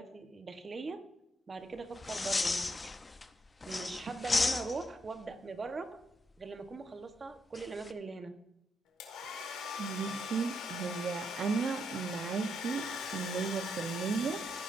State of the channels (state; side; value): normal; both; correlation 0.79